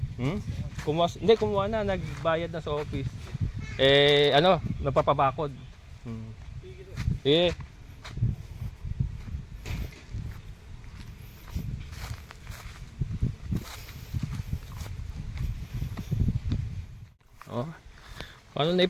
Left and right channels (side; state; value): both; identical; correlation 1.00